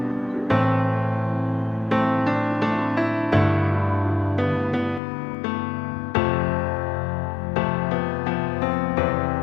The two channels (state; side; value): drops out; right; at 5.0 s